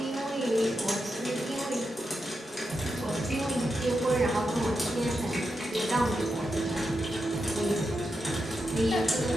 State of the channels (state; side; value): normal; both; correlation 0.87